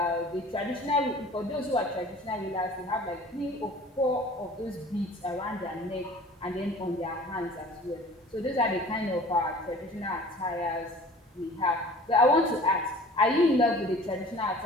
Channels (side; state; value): both; normal; correlation 0.46